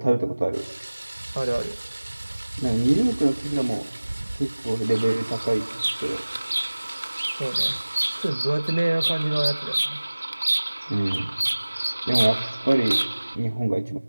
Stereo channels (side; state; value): both; inverted; correlation -1.00